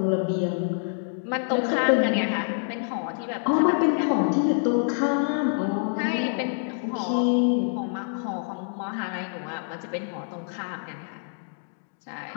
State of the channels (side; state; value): right; silent; digital silence